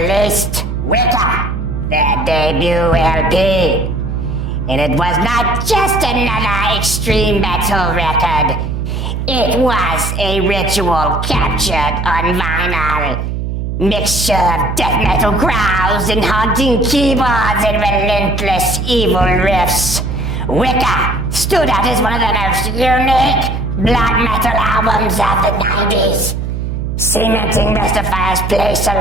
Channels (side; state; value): right; noise; hum, 3 dB below the sound